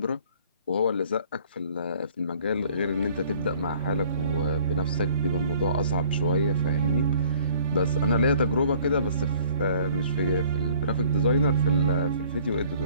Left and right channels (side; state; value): both; inverted; correlation -0.55